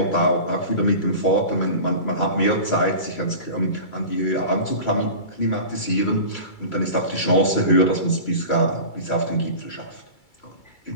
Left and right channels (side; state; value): right; late; 2.3 ms